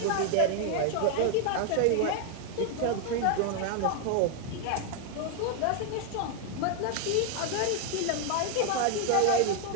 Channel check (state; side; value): different; both; correlation 0.01